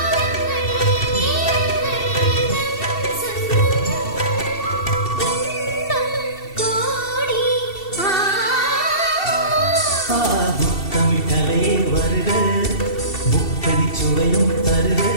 முத்தமிட்டலையே வருக, முத்தடி சுவையும் தருக.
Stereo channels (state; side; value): late; right; 2.7 ms